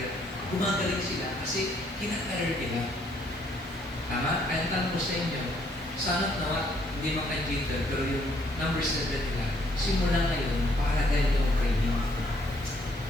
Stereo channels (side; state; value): both; normal; correlation 0.68